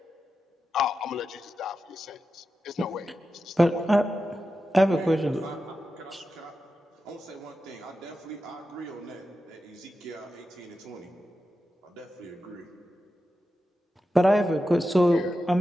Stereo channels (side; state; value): both; normal; correlation 0.91